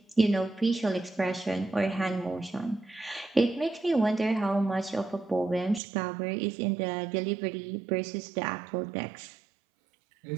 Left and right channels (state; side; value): drops out; left; at 5.8 s